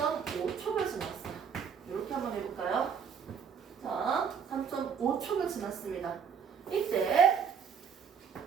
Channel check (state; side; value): quieter; left; 6.9 dB